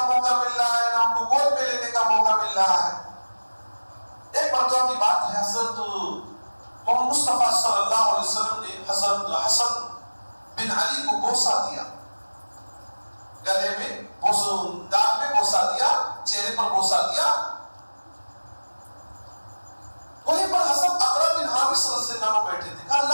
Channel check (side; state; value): both; inverted; correlation -1.00